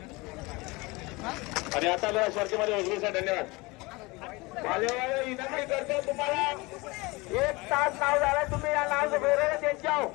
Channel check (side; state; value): right; quieter; 24.1 dB